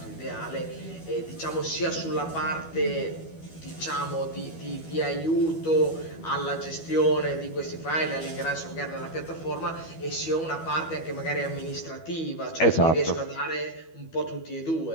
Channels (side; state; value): right; late; 12 ms